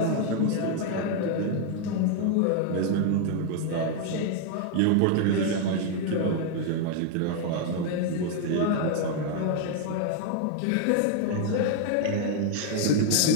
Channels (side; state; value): both; different; correlation 0.00